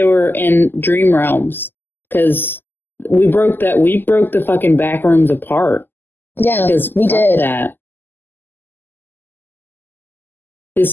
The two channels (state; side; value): late; right; 0.093 ms